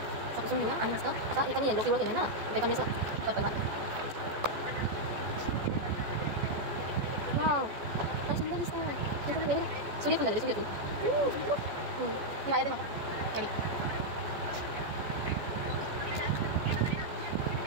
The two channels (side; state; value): left; late; 14 ms